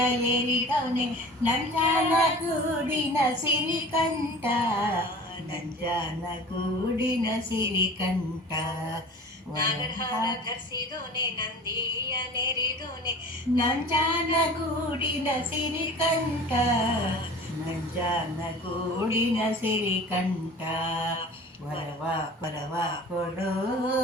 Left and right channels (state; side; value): normal; both; correlation 0.41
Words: ನಂಜನ ಗೂಡಿನ ಸಿರಿಕಂಠ ನಂಜನ ಗೂಡಿನ ಸಿರಿಕಂಠ ನಾಗರಹಾರ ಧರಿಸಿದೋನೆ ನಂದಿಯ ನೆರಿದೋನೆ ನಂಜನ ಗೂಡಿನ ಸಿರಿಕಂಠ ನಂಜನ ಗೂಡಿನ ಸಿರಿಕಂಠ ವರವ ವರವ ಕೊಡು